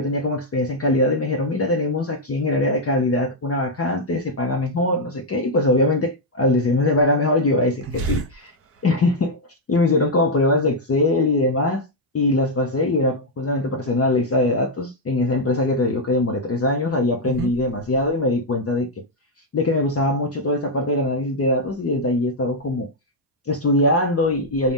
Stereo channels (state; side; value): normal; both; correlation -0.01